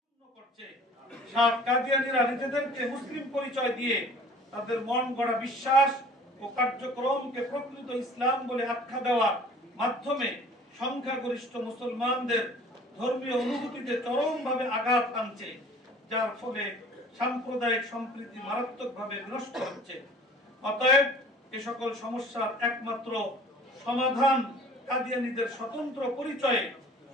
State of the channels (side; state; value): both; normal; correlation 0.48